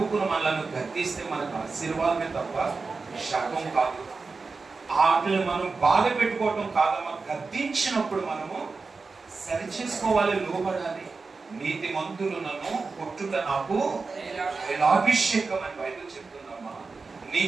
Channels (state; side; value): quieter; left; 4.3 dB